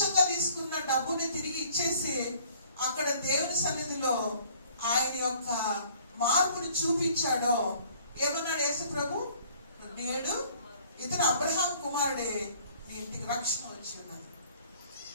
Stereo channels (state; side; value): inverted; both; correlation -0.55